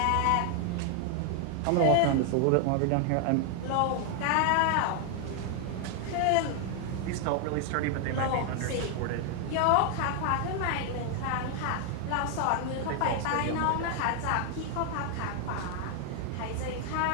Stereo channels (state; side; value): different; both; correlation 0.00